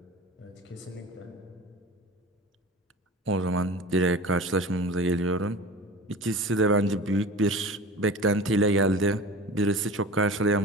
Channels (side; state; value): both; normal; correlation 0.36